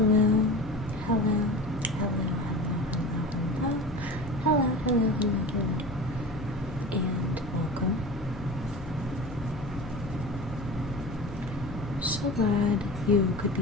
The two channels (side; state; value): left; noise; hum, 17 dB below the sound